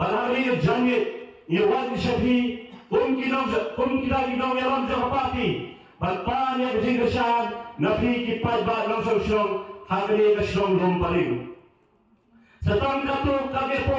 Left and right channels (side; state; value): both; identical; correlation 1.00